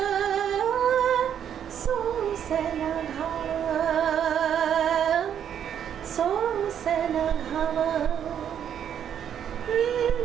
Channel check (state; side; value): quieter; left; 9.1 dB